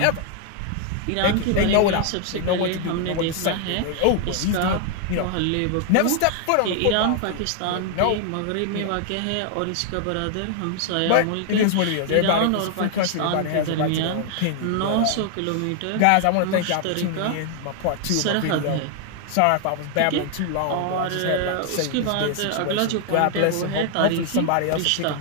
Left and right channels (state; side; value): different; both; correlation 0.00